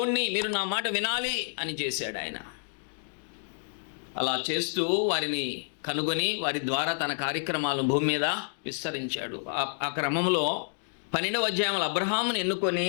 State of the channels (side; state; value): right; silent; digital silence